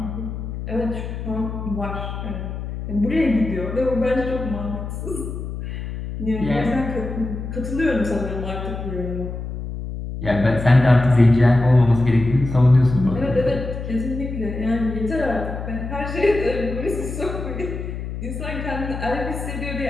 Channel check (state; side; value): noise; left; hum, 7 dB below the sound